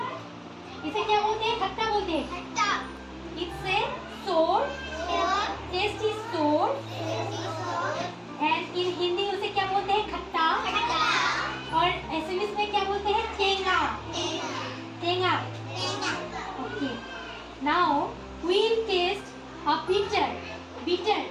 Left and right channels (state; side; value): identical; both; correlation 1.00